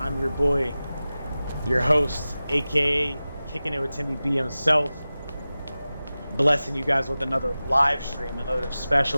your boy, your host, aka Kicking It with Timmy B himself. Blessing you guys with another live stream, another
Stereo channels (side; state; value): both; inverted; correlation -0.96